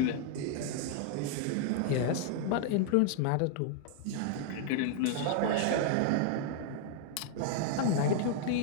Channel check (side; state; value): both; different; correlation -0.01